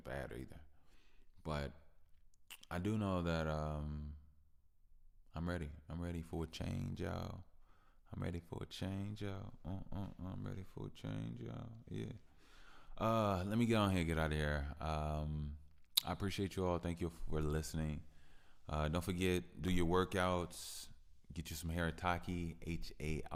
either. But I do know that I'm ready. I'm ready for a change, y'all. I'm ready for a change, y'all. I'm ready for a change, y'all. Yeah. Let me get on here, get out of here. I appreciate you all. Thank you for listening. Don't forget, do your workouts. Get you some haritaki,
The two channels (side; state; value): both; identical; correlation 1.00